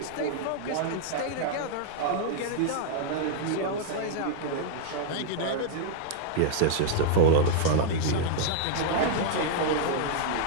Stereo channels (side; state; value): both; different; correlation -0.01